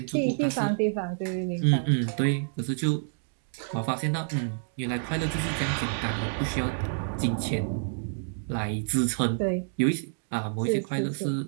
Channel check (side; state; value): left; silent; digital silence